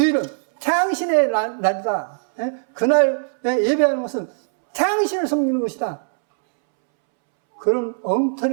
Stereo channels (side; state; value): left; silent; 65 dB below the other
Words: 태양신의 날이다. 그날 예배하는 것은 태양신을 섬기는 것이다. 그런